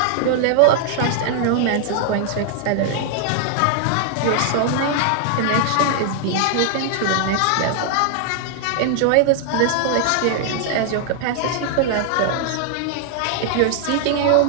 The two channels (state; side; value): different; both; correlation 0.00